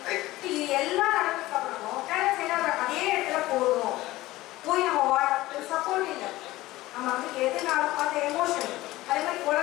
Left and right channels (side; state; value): right; quieter; 17.7 dB